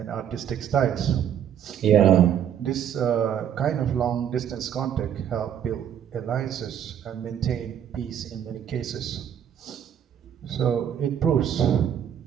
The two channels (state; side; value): quieter; left; 9.4 dB